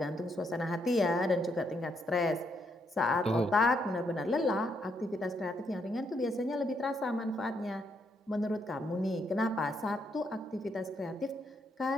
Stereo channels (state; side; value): normal; both; correlation 0.76